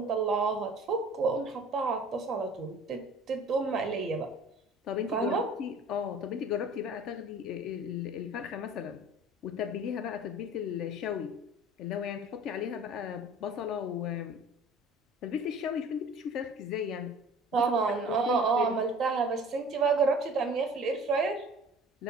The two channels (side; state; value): both; normal; correlation 0.45